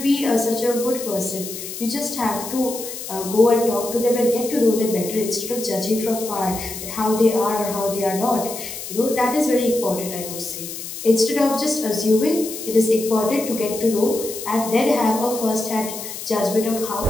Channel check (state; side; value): noise; left; hiss, 9 dB below the sound